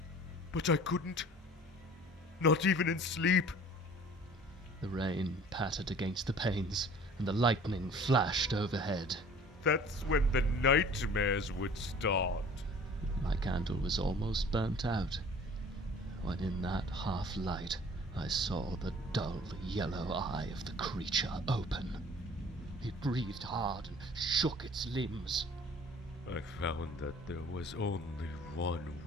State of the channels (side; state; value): both; normal; correlation 0.48